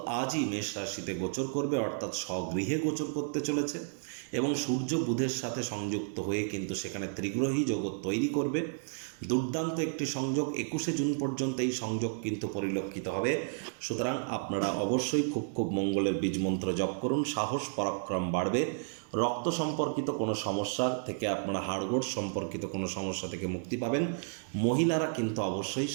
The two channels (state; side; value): silent; left; 56 dB below the other